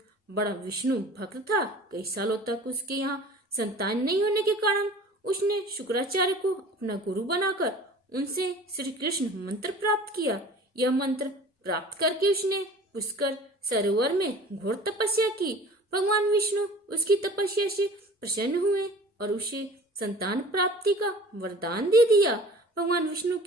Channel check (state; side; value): normal; both; correlation 0.44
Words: बड़ा विष्णु भक्त था। कई सालों तक उसके यहाँ संतान नहीं होने के कारण उसने शुक्राचार्य को अपना गुरु बनाकर उनसे श्री कृष्ण मंत्र प्राप्त किया। यह मंत्र प्राप्त करके उसने पुष्कर सरोवर में घोर तपस्या की। भगवान विष्णु उसकी तपस्या से प्रसन्न हुए और उसे संतान प्राप्ति का वरदान दे दिया। भगवान विष्णु